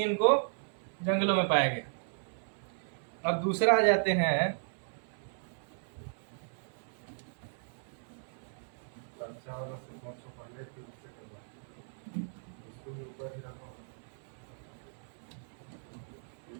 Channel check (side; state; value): left; silent; 54 dB below the other